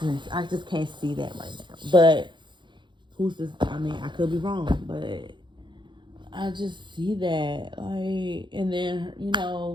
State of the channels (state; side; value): late; left; 0.23 ms